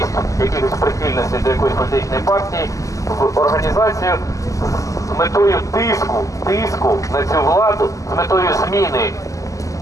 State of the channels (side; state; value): right; late; 0.16 ms